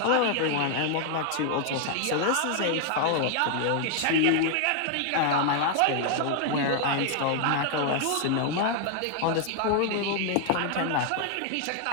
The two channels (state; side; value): different; both; correlation 0.00